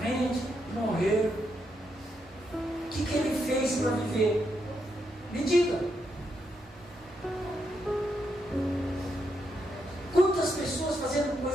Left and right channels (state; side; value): normal; both; correlation 0.81